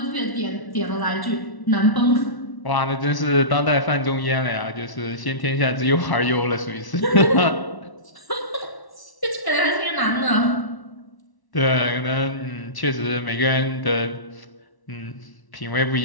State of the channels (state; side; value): late; right; 1.1 ms